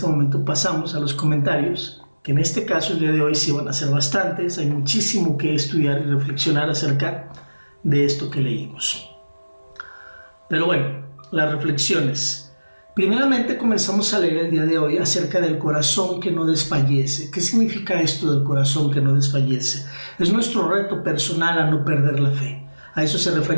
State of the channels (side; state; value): both; inverted; correlation -1.00